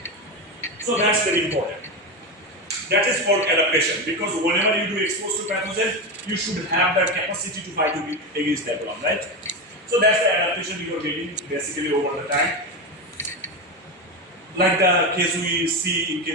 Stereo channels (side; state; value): both; normal; correlation 0.17